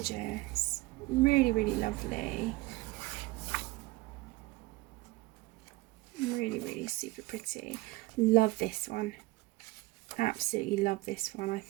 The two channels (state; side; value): quieter; left; 20.6 dB